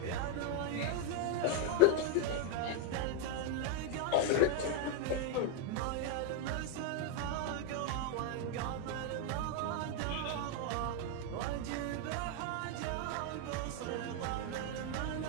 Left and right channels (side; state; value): both; different; correlation 0.01